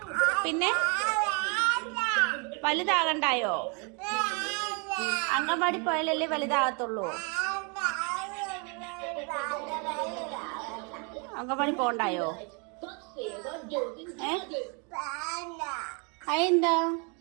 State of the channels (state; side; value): quieter; left; 34.4 dB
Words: പിന്നെ വലുതാകണ്ടായോ? അംഗൻവാടി പോയാലല്ലേ വലുതാകത്തുള്ളൂ. അംഗൻവാടി പോണ്ടായോ? അതെന്താ?